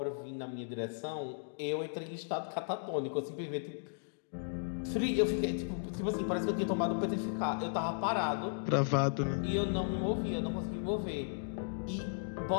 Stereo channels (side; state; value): right; silent; digital silence